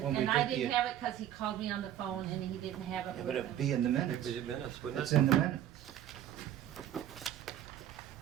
When we I did the- didn't have it because he called me on the phone and he didn't have it Yeah, with but him. it'd be in the minutes. Maybe minutes, wouldn't It's it? in the minutes.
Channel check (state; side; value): quieter; left; 11.2 dB